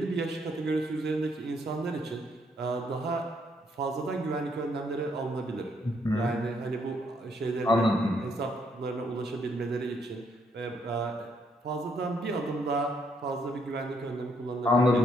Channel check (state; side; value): normal; both; correlation 0.72